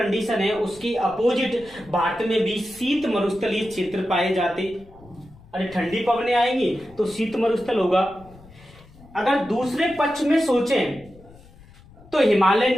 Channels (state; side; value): noise; left; rumble, 23 dB below the sound